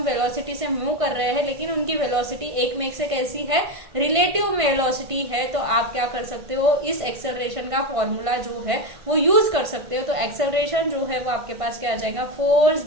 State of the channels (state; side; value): late; left; 1.5 ms